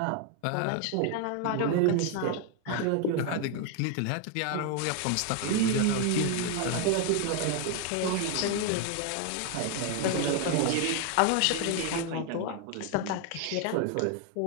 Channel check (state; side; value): different; both; correlation 0.01